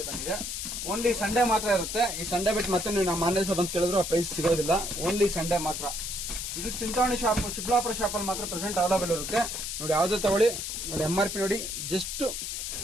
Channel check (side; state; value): left; noise; hiss, 4 dB below the sound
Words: ಬಂದಿದೆ. ಓನ್ಲಿ ಸಂಡೇ ಮಾತ್ರ ಇರುತ್ತೆ. ಈ ಸಂಡೇ ಬಿಟ್ಟು ಮತ್ತೆ ನೀವು ನಮ್ಮ ಆನ್ಲೈನ್ ಶಾಪ್ ಅಂತ ಕೇಳಿದ್ರು ಆ ಪ್ರೈಸ್ ಸಿಗೋದಿಲ್ಲ. ಓನ್ಲಿ ಸಂಡೇ ಮಾತ್ರ. ಇದು ಚಿಂತಾಮಣಿ ಶಾಪ್, ಚಿಕ್ಕಬಳ್ಳಾಪುರ ಶಾಪ್ ಅಲ್ಲಿ ಮಾತ್ರ ಪ್ರೆಸೆಂಟ್ ಅವೈಲೇಬಲ್ ಇರುತ್ತೆ ನೋಡಿ. ಯಾವ್ದು ತಗೊಳ್ಳಿ ನೋಡಿ. MRP ನೋಡಿ, ಜಸ್ಟ್